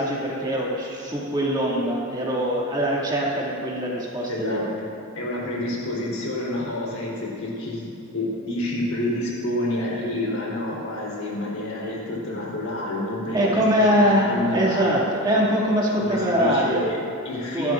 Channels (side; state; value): both; normal; correlation 0.27